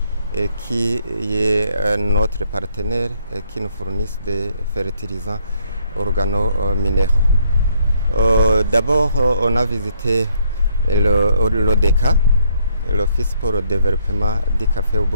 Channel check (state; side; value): inverted; both; correlation -0.69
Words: qui est notre partenaire et qui nous fournissent des fertilisants organo-minéraux. D'abord, on a visité l'ODECA, l'Office pour le développement du café au